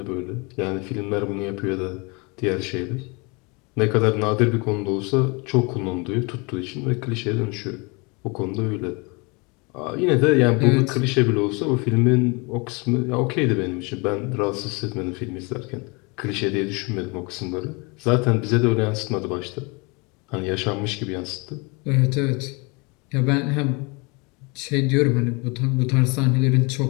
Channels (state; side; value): quieter; right; 29.2 dB